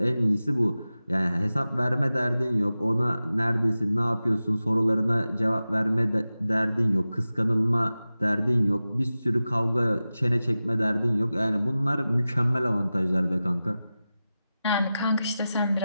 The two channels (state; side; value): inverted; both; correlation -0.95